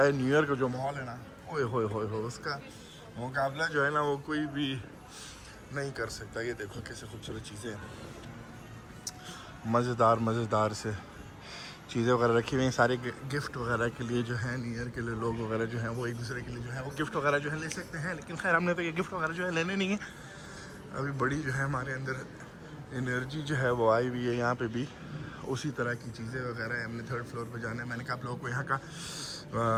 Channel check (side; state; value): both; identical; correlation 1.00